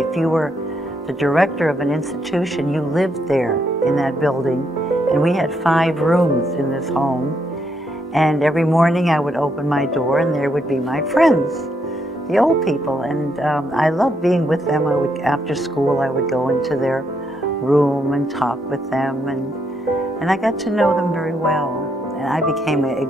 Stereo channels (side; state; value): both; normal; correlation 0.76